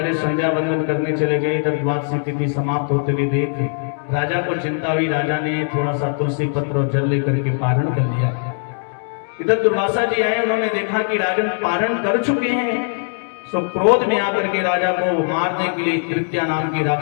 संध्या वंदन करने चले गए। इधर द्वादशी तिथि समाप्त होते हुए देख राजा को चिंता हुई। राजा ने थोड़ा सा तुलसी पत्र और जल लेकर के पारण कर लिया। इधर दुर्वासा जी आए, उन्होंने देखा कि राजन पारण कर चुके हैं। सो क्रोध में आकर के राजा को मारने के लिए कृत्या नाम की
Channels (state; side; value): silent; right; 64 dB below the other